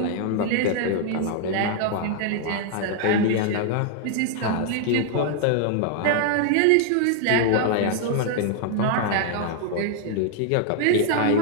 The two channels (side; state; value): both; different; correlation 0.00